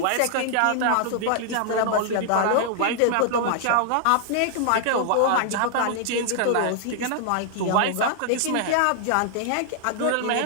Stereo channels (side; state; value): both; different; correlation -0.01